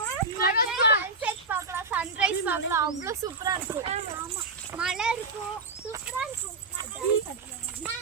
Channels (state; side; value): quieter; left; 3.6 dB